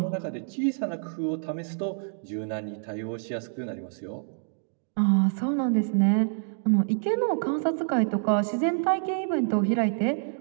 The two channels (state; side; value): silent; left; digital silence